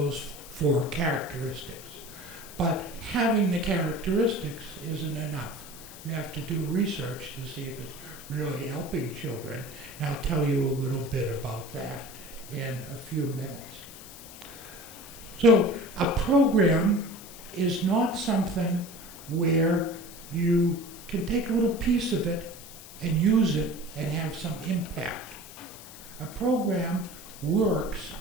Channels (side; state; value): left; noise; hiss, 16 dB below the sound